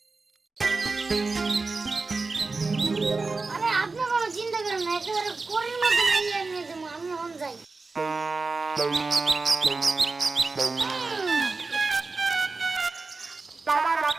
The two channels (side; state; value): left; quieter; 3.9 dB